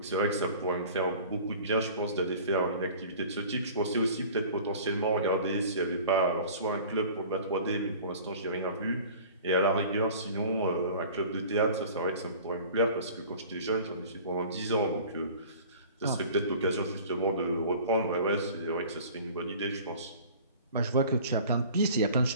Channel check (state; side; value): inverted; both; correlation -0.44